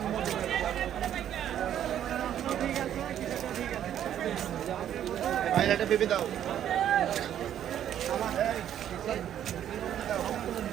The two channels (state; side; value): quieter; left; 10.5 dB